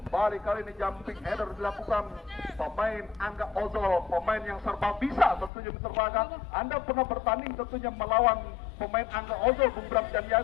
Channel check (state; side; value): drops out; right; at 5.5 s